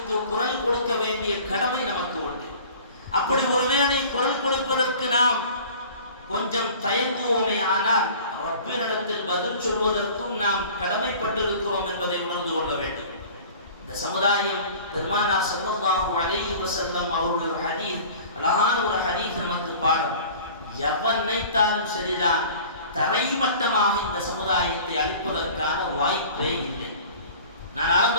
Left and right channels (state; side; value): inverted; both; correlation -0.44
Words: குரல் கொடுக்க வேண்டிய கடமை நமக்கு உண்டு. அப்படி ஒருவேளை குரல் கொடுப்பதற்கு நாம் கொஞ்சம் தயங்குவோமே, ஆனால் ரப்பினிடத்தில் பதில் சொல்வதற்கும் நாம் கடமைப்பட்டிருக்கிறோம் என்பதை உணர்ந்து கொள்ள வேண்டும். இந்த சமுதாயம் பெருமானார் ஸல்லல்லாஹு அலைஹி வஸல்லம் அவருடைய ஹதீஸ், அழகான ஒரு ஹதீஸ் நமக்கு பாடம். எவன் நினைத்தாலும் சரிதான், தரைமட்டமாக இந்த சமுதாயத்தை அழிப்பதற்கான வாய்ப்பே இல்லை. நான்